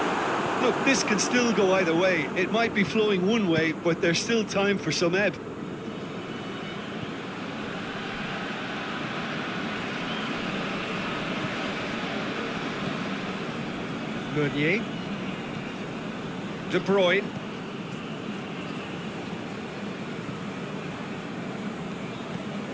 Look, this can still go either way. It might be flowing one way, but there's still time for some ebb. Meunier. De Bruyne.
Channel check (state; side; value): identical; both; correlation 1.00